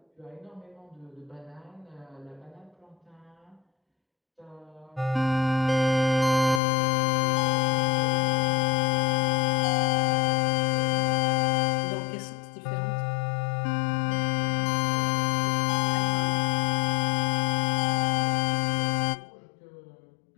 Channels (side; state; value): right; drops out; at 6.6 s